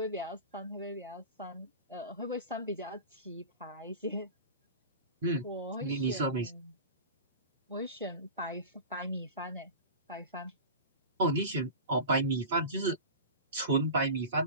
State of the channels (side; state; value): both; inverted; correlation -0.30